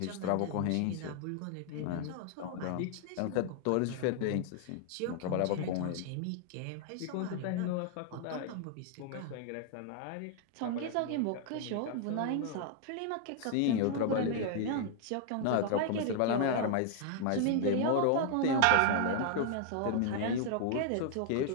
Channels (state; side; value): different; both; correlation 0.00